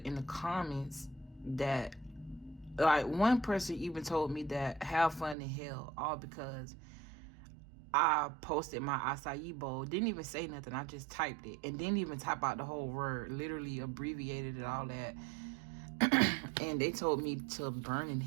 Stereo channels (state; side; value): drops out; left; at 5.4 s